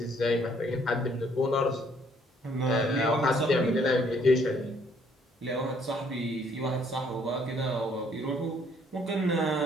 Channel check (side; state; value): both; normal; correlation 0.64